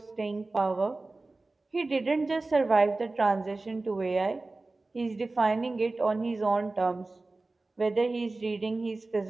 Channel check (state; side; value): quieter; left; 3.2 dB